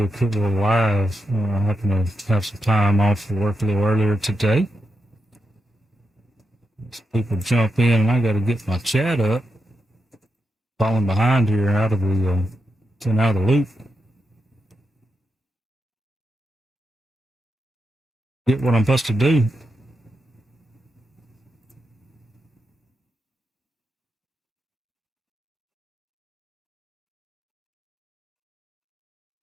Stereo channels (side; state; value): both; normal; correlation 0.86